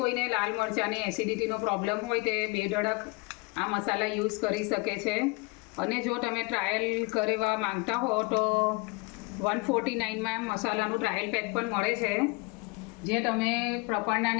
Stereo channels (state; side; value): quieter; right; 27.8 dB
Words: કોઈને લાલ મરચાંની એસિડિટીનો પ્રોબ્લેમ હોય તે બેધડક આ મસાલા યુઝ કરી શકે છે. અને જો તમે ટ્રાયલ કરવા માંગતા હો તો 149માં મસાલાનું ટ્રાયલ પેક પણ મળે છે, જે તમે